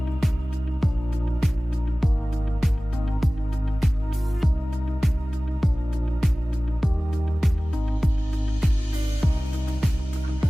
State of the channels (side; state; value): both; normal; correlation 0.98